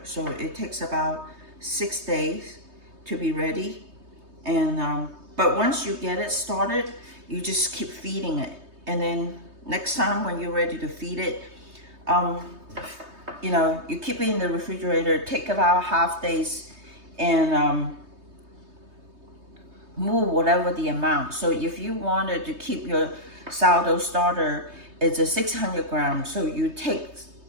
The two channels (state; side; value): late; left; 3.2 ms